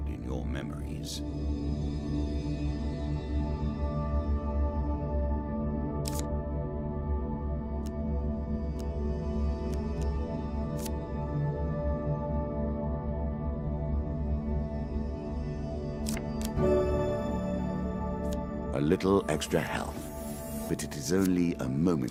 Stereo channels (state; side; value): identical; both; correlation 1.00